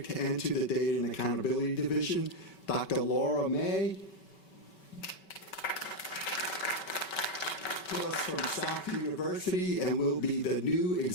and to the Data and Accountability Division, Dr. Laura May. To us from South University, and will be the new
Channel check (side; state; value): right; late; 5.2 ms